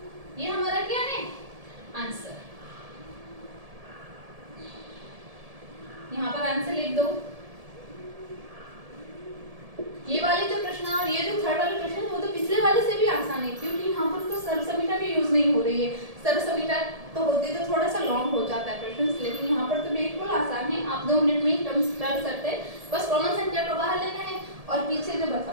ये हमारा क्या है आंसर। यहाँ पर आंसर लिख दो। ये वाले जो प्रश्न और ये जो थर्ड वाले प्रश्न वो तो पिछले वाले से भी आसान आसान है क्योंकि यहाँ पर तो सर्वसमीटा भी यूज नहीं हो रही है। सर्वसमीटा तो होती तो थोड़ा सा लॉन्ग हो जाता है क्वेश्चन, लेकिन यहाँ पर तो बिल्कुल आसान है, आप 2 मिनट में ही टर्म्स कर सकते हैं। बस कॉमन संख्या को बाहर लेना है और पीछे जो बचा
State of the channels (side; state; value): left; late; 1.7 ms